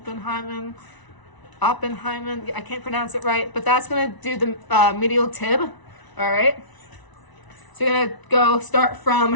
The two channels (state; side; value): late; right; 1.0 ms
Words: Oppenheimen, I can't pronounce it right, but that's gonna do the medial tib, all right? So you're gonna go